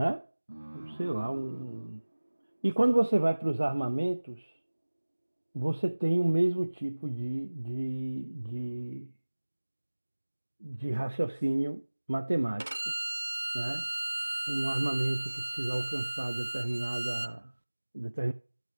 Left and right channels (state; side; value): inverted; both; correlation -1.00